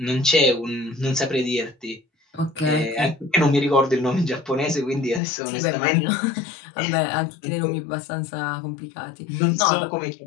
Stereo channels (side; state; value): right; drops out; at 5.2 s